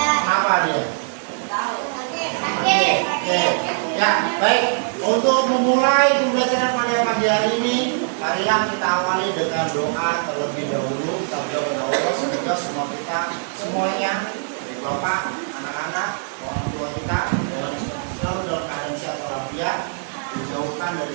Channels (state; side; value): silent; left; digital silence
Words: dia? Oke. Ya, baik. Untuk memulai pembelajaran pada pagi hari ini, marilah kita awali dengan doa terlebih dahulu. Kita berdoa Allah semoga semua kita semuanya, dari bapak, anak-anak, orang tua kita selalu dalam keadaan sehat walafiat, dijauhkan dari